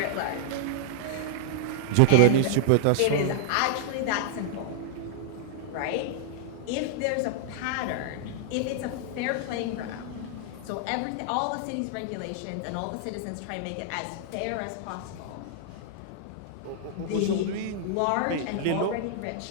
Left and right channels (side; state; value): both; different; correlation -0.01